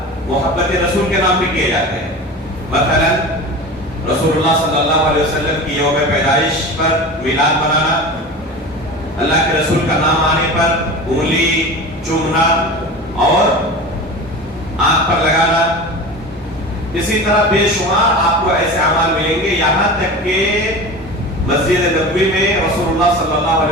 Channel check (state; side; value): normal; both; correlation 0.32